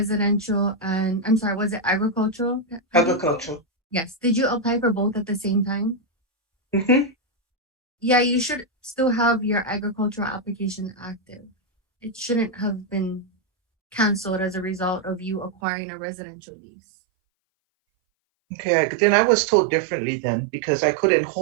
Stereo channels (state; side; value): drops out; left; at 15.6 s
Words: and, I'm sorry, was it agricultural? Agricultural. Yes. Did you apply for both at the same time? Mm-hmm. Yeah, you should still have your agricultural application active. It shouldn't have been canceled as a result of you acquiring a residential lease. Okay, then I was told differently then because I couldn't